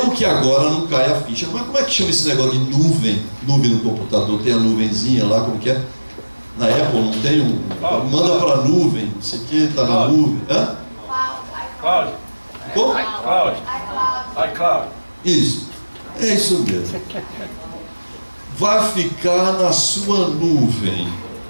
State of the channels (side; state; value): both; inverted; correlation -1.00